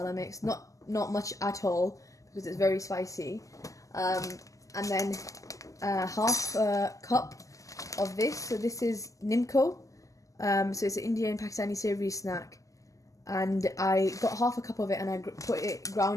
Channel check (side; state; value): right; late; 0.16 ms